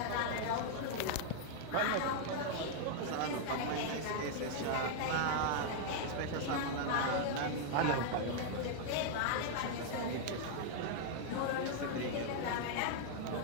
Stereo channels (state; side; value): different; both; correlation 0.00